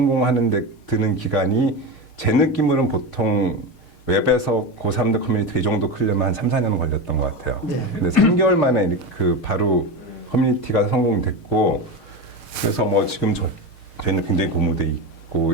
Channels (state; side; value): late; right; 6.5 ms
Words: 데 드는 기간이 제 느낌으로는 보통 웹에서 고3들 커뮤니티가 이 정도 크려면 한 3, 4년 걸렸던 것 같아요. 네. 근데 3개월 만에 그 바로 커뮤니티가 성공됐고, 그래서 뭐 지금 저희는 굉장히 고무돼